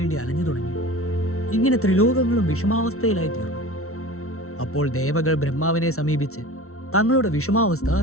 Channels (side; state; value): right; late; 0.63 ms